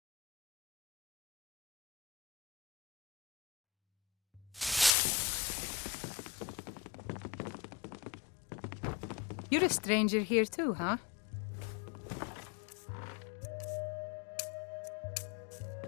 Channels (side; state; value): right; drops out; at 4.9 s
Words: You're a stranger here too, huh?